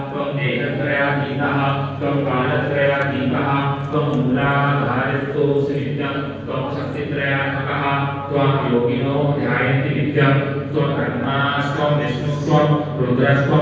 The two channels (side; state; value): both; identical; correlation 1.00